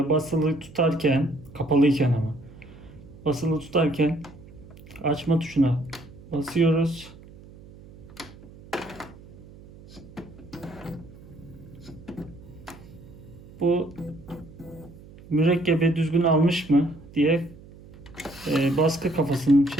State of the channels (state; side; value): noise; right; hum, 20 dB below the sound